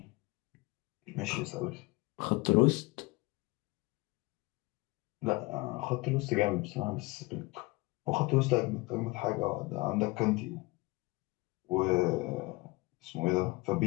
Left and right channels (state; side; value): quieter; right; 23.4 dB